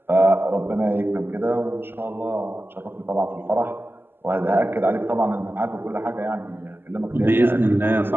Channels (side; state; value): left; late; 0.10 ms